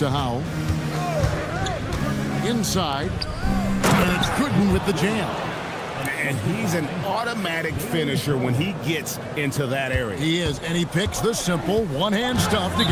Howell. Inside. And it's Gooden with the jam. And he's an automatic finisher when he gets into that area. He is, and he picks the simple one-hand stuff to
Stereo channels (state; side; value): identical; both; correlation 1.00